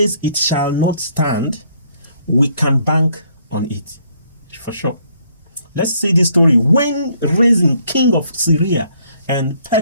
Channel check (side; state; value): both; inverted; correlation -0.67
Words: it shall not stand, we can bank on it for sure. Let's see this story. When Rezin, king of Syria, and